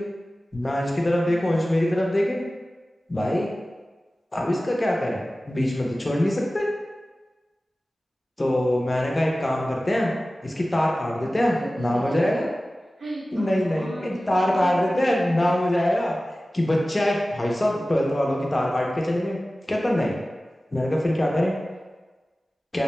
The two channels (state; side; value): normal; both; correlation 0.96